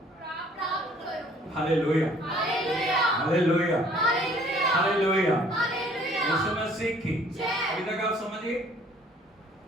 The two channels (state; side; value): normal; both; correlation 0.57